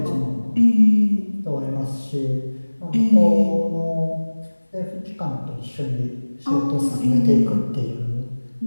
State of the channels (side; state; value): both; inverted; correlation -1.00